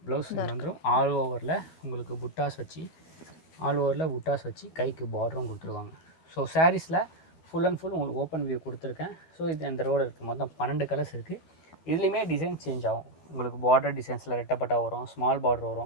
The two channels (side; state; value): right; late; 12 ms